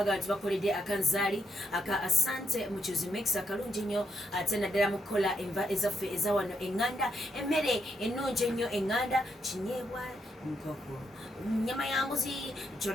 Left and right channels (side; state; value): both; normal; correlation 0.79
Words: nti bakoledde akanzaali aka asante muchuzi mix akalungi nnyo ate naddala mu kukola enva ezaffe eza wano eŋŋanda emmere ennungi ennyo eŋŋanda kinyeebwa nkoko nyama ya mbuzi